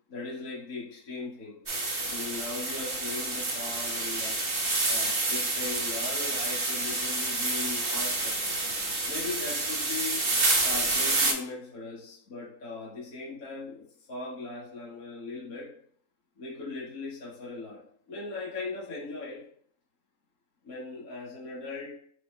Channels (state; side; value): late; right; 3.8 ms